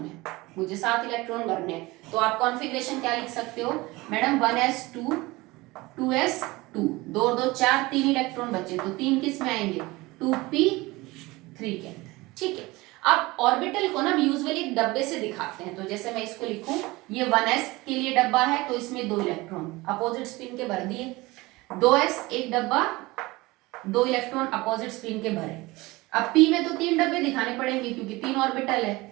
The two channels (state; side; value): quieter; left; 21.5 dB